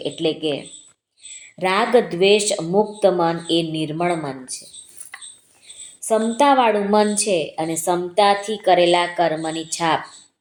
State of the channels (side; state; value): both; identical; correlation 1.00